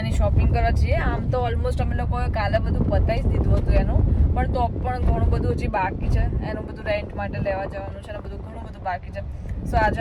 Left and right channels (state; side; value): identical; both; correlation 1.00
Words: શોપિંગ કરવા જઈએ આમ તો ઓલમોસ્ટ અમે લોકોએ કાલે બધું પતાવી જ દીધું હતું એનું પણ તો પણ ઘણું બધું હજી બાકી છે એનું બધું રેન્ટ માટે લેવા જવાનું છે અને બધું ઘણું બધું બાકી છે સો આજે